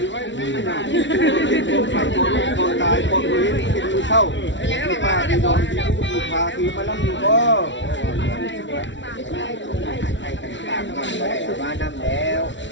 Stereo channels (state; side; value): late; right; 0.54 ms